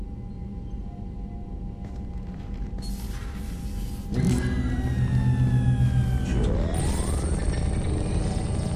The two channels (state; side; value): identical; both; correlation 1.00